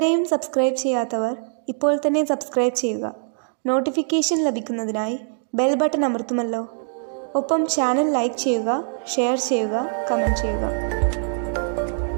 സബ്സ്ക്രൈബ് ചെയ്യാത്തവർ ഇപ്പോൾ തന്നെ സബ്സ്ക്രൈബ് ചെയ്യുക. നോട്ടിഫിക്കേഷൻ ലഭിക്കുന്നതിനായി ബെൽ ബട്ടൺ അമർത്തുമല്ലോ. ഒപ്പം ചാനൽ ലൈക്ക് ചെയ്യുക, ഷെയർ ചെയ്യുക, കമൻറ്റ് ചെയ്യുക.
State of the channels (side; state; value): left; silent; digital silence